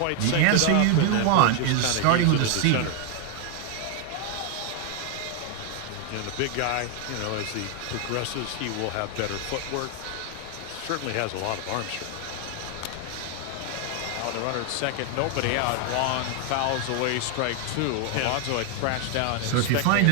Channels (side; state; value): both; different; correlation 0.00